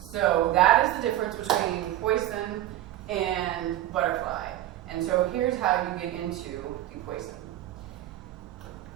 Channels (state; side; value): quieter; left; 13.8 dB